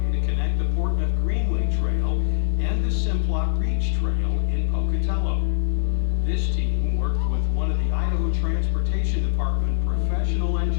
to connect the Portneuf Greenway Trail and the Simplot Reach Trail in Pocatello. This team worked with one of the Idaho Transportation Department professional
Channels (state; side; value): silent; right; 61 dB below the other